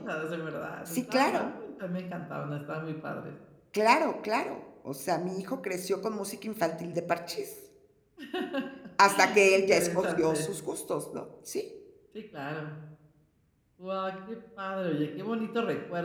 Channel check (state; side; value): identical; both; correlation 1.00